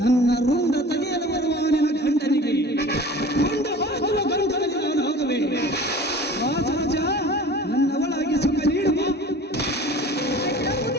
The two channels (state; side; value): normal; both; correlation 0.42